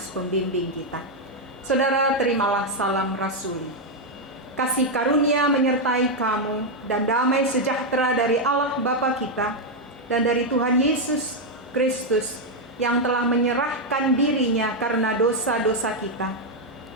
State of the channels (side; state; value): both; normal; correlation 0.01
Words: pembimbing kita. Saudara, terimalah salam rasuli. Kasih karunia menyertai kamu dan damai sejahtera dari Allah Bapa kita dan dari Tuhan Yesus Kristus yang telah menyerahkan dirinya karena dosa-dosa kita